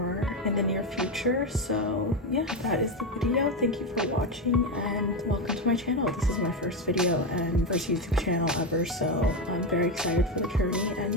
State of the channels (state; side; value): normal; both; correlation 0.12